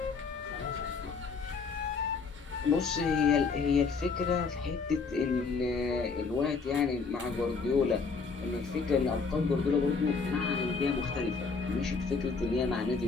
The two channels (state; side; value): quieter; right; 4.8 dB